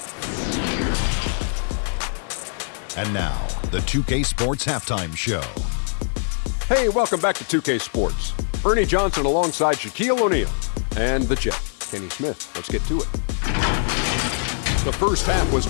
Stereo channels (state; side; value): silent; right; 64 dB below the other